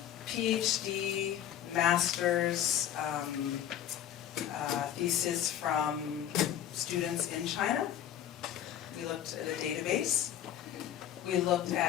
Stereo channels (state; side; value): quieter; right; 10.8 dB